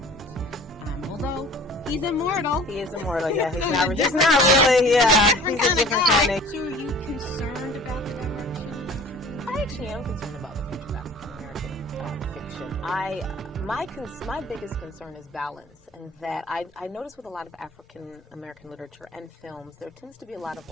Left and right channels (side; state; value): both; normal; correlation 0.45